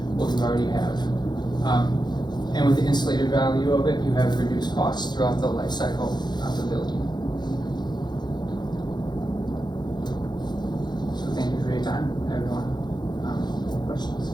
what you already have. And with the insulated value of it, you have reduced costs throughout the life cycle of the building. So thank you for your time, everyone. Questions?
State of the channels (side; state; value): right; late; 0.21 ms